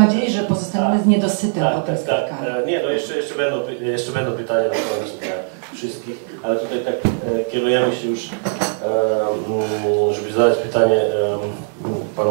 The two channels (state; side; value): silent; left; 66 dB below the other